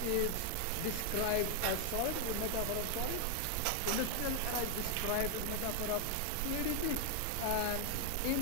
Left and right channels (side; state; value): both; different; correlation 0.00